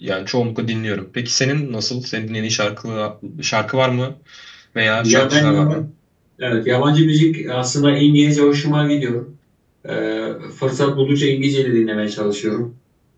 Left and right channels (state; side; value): identical; both; correlation 1.00